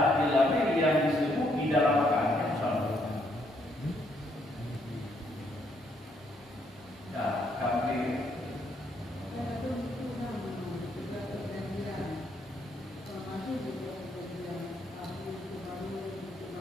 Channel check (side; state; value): both; normal; correlation 0.72